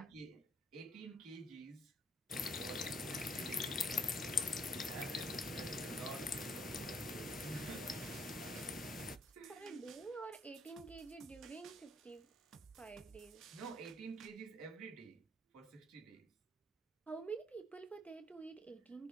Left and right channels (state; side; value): normal; both; correlation 0.65